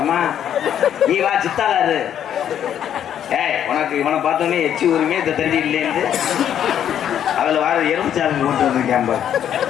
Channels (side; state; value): right; quieter; 9.8 dB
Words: நீ வா சித்தாளாரு ஏய் உனக்கு இவனை பார்த்தோன்னே எச்சி ஊருமே இந்த தண்ணி இல்லைன்னு அதுல வர எறும்புச்சாலை கொண்டு வந்திருக்கேன்